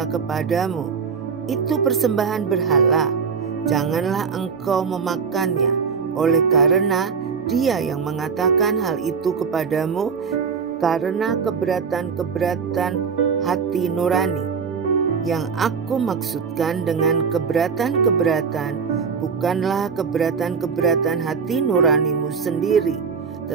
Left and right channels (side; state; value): left; quieter; 5.9 dB